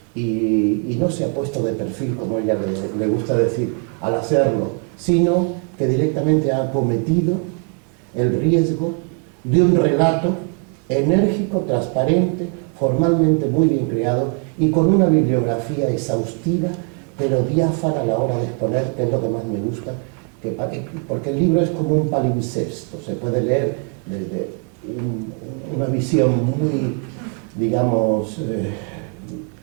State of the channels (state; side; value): quieter; left; 39.1 dB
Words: Y no se ha puesto de perfil, como ella le gusta decir, al hacerlo, sino que directamente ha acometido el riesgo de un relato enérgico, transparente, formalmente muy bien creado y con una bibliografía exhaustiva, pero diáfana a la hora de exponer, que es lo que más me gusta, porque el libro es como un palimpsesto, se puede leer desde una visión muy, digamos,